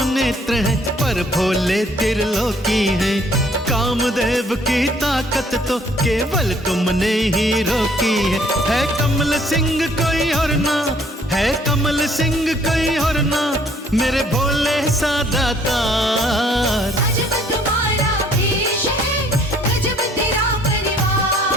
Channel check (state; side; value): normal; both; correlation 0.61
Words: नेत्र हैं, पर भोले त्रिलोकी हैं। कामदेव की ताकत तो केवल तुमने ही रोकी है कमल सिंह कोई और ना, है कमल सिंह कोई और ना, मेरे भोले सा दातार। अजब तुम्हारा भेष है, गजब तेरा